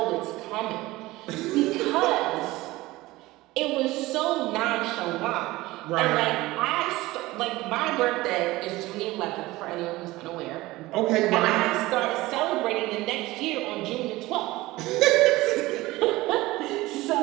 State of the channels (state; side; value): quieter; left; 19.0 dB